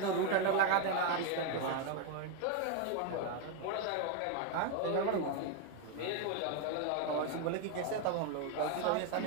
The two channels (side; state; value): both; different; correlation 0.01